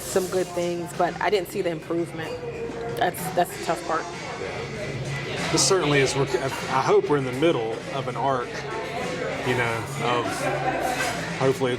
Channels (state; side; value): identical; both; correlation 1.00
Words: good things, but I didn't see the improvement. That's the tough part. this certainly is. I hope we're in the middle of an arc, of hopefully